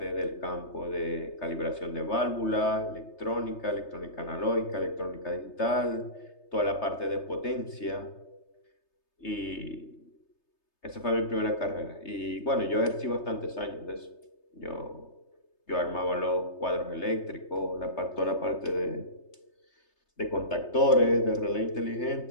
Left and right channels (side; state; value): right; late; 3.3 ms